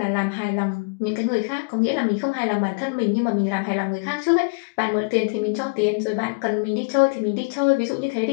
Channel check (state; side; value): quieter; right; 35.2 dB